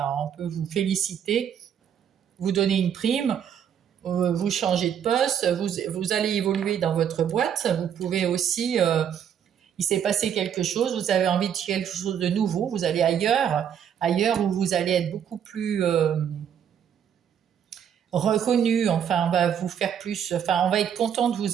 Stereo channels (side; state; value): left; quieter; 8.7 dB